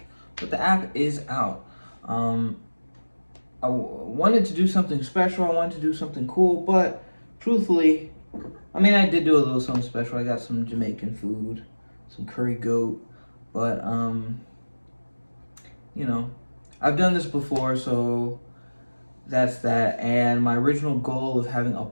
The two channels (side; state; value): both; inverted; correlation -1.00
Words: but the app is out. I wanted to do something special. I wanted to do something cool, but truthfully, I did do a little something special. I got some Jamaican food, some curry goat, but I've done this before, so that's that. And my original goal of having a